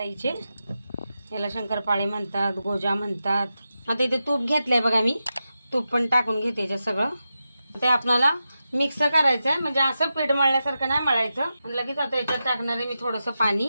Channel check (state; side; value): inverted; both; correlation -0.90